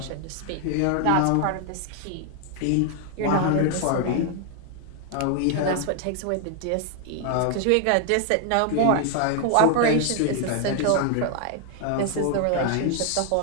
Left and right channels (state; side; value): different; both; correlation 0.00